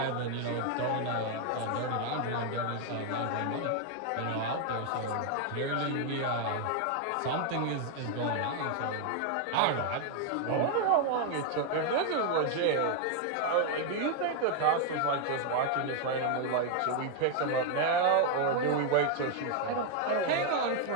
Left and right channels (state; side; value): different; both; correlation 0.01